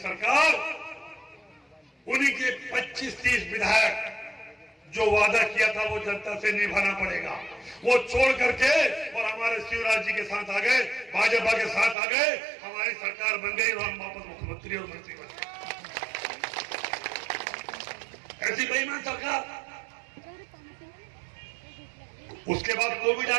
उन्हीं के 25-30 विधायक जो वादा किया था वो जनता से निभाना पड़ेगा, वो छोड़ करके और हमारे शिवराज जी के साथ आ गए, भाजपा के साथ आ गए, हमारी सरकार बन गई और हम वापस मुख्यमंत्री और मंत्री बन गए। ऐसी बेईमान सरकार। उसके बाद कोविड आ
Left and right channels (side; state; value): left; drops out; at 12.0 s